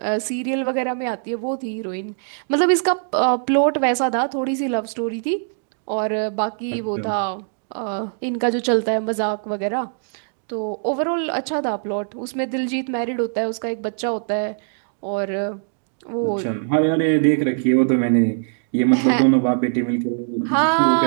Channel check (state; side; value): silent; left; digital silence